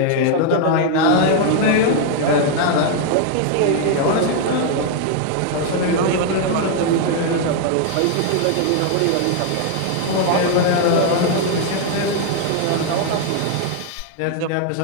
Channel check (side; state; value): both; different; correlation 0.00